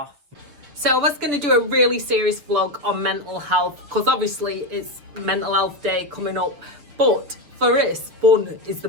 So I was going to do a really serious vlog on mental health, because obviously it's Mental Health Day coming up, but for us, fun is the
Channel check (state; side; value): late; left; 6.7 ms